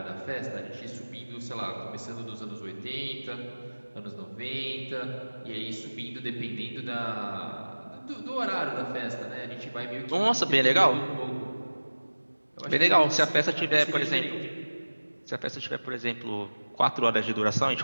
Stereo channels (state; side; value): inverted; both; correlation -1.00